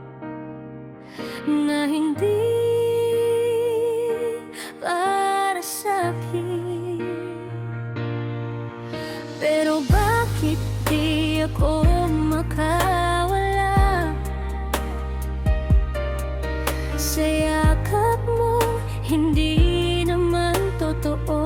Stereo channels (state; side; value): identical; both; correlation 1.00